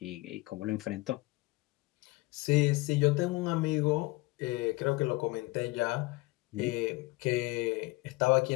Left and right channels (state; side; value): quieter; right; 22.1 dB